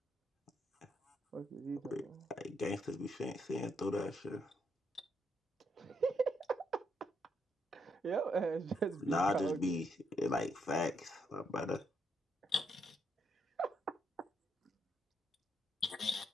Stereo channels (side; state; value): both; normal; correlation 0.76